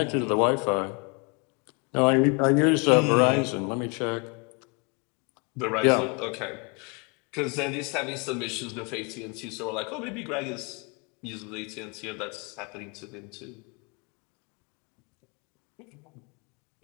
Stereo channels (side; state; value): right; quieter; 33.4 dB